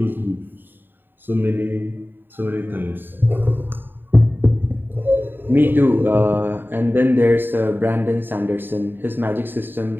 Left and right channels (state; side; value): late; left; 0.094 ms